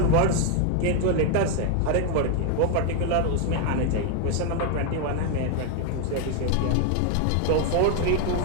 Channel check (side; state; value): both; different; correlation 0.01